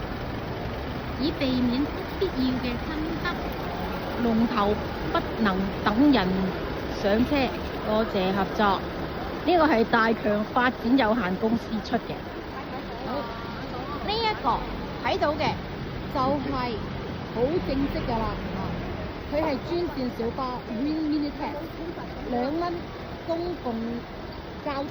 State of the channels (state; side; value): identical; both; correlation 1.00